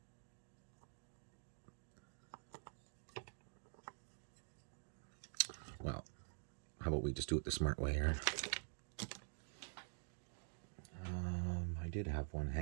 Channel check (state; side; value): silent; left; digital silence